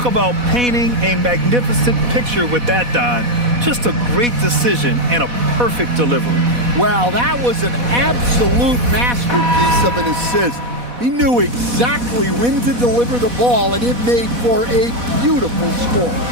about painting a magnificent picture with that, Don. Just a great decision and a perfect delivery. Wow, that was an absolute masterpiece of an assist. He knew exactly when to deliver the ball, and it made for a beautiful score.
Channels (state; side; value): late; left; 4.1 ms